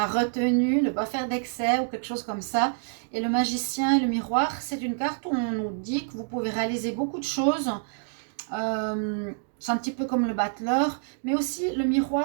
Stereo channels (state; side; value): silent; left; digital silence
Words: retenue, ne pas faire d'excès ou quelque chose comme ça. Et le magicien et le miroir, c'est une carte où on nous dit que vous pouvez réaliser beaucoup de choses. C'est un petit peu comme le battleur, mais aussi le